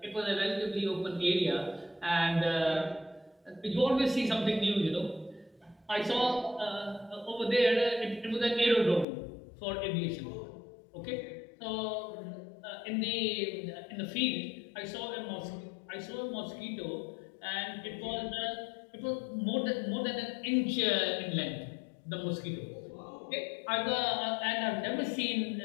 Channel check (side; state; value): right; drops out; at 9.1 s